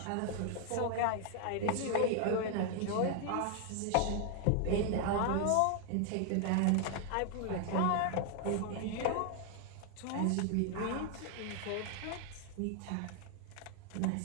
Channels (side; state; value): both; different; correlation 0.00